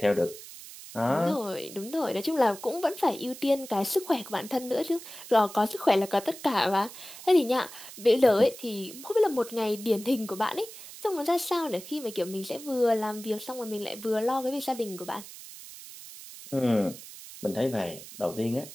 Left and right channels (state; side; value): noise; right; hiss, 15 dB below the sound